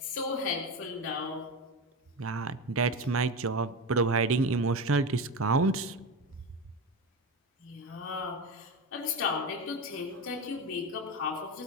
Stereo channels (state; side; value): normal; both; correlation 0.20